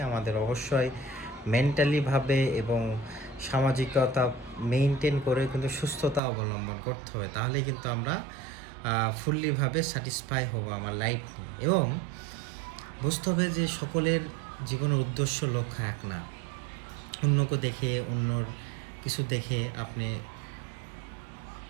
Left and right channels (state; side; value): drops out; left; at 6.2 s